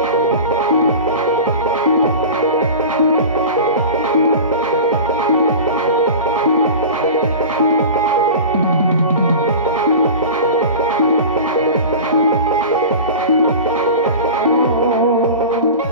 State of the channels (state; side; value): inverted; both; correlation -0.33